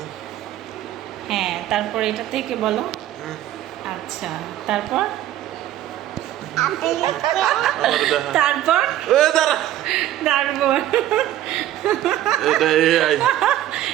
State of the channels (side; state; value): left; quieter; 13.0 dB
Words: হ্যাঁ, তারপর এটা থেকে বলো। আচ্ছা, তারপর তারপর তারপর